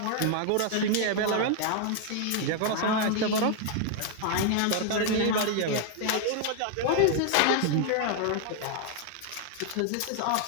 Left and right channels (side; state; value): both; different; correlation 0.00